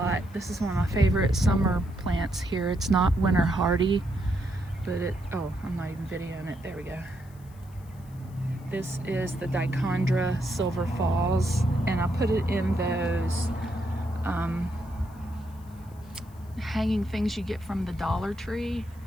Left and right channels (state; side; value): noise; left; hiss, 28 dB below the sound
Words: This is one of my favorite summer plants here. It's not winter hardy, but oh, I'm not even videoing it. There we go. This is the Dichondra Silver Falls, and I put it in those hanging things you get from the Dollar Tree.